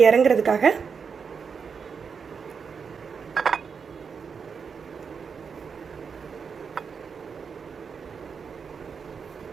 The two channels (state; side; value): quieter; left; 6.0 dB